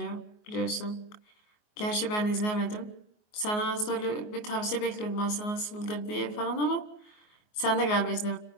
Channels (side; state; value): right; late; 24 ms